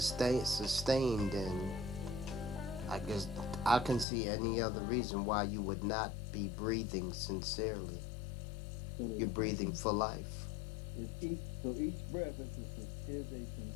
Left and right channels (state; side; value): drops out; right; at 4.0 s